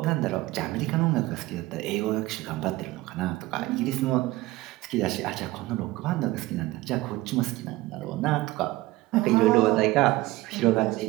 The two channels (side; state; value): left; quieter; 18.6 dB